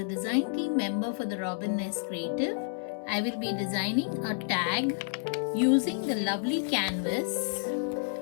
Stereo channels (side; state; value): right; silent; digital silence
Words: design team member for the Robin Nest Creative, I will be designing a tag using the lovely canvas